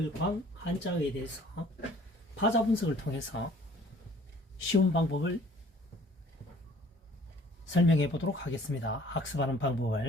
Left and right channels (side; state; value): both; normal; correlation 0.54